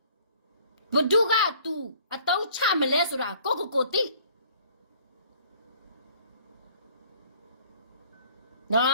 ဘဒုက तू အတုံးချမလဲဆိုတာကိုတိနော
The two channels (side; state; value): both; inverted; correlation -0.55